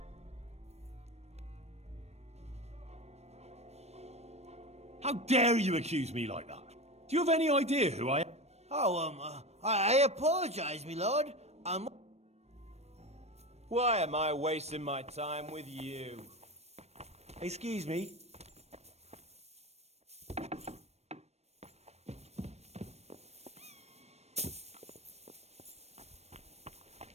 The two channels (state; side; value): late; left; 0.31 ms